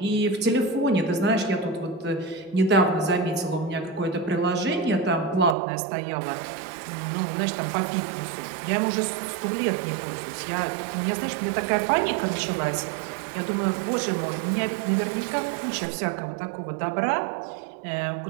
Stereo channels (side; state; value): left; drops out; at 5.6 s